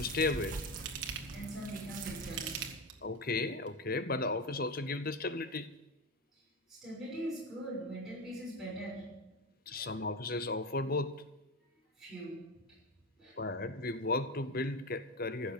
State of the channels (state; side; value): normal; both; correlation 0.19